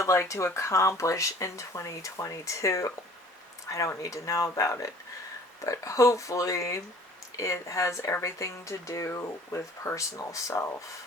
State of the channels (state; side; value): normal; both; correlation 0.51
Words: like to accomplish in 2022? I don't need to know about it, but hopefully it has everything to do with personal self,